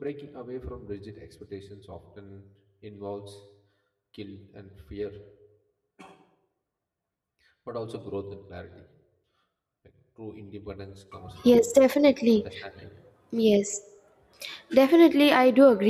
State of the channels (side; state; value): both; identical; correlation 1.00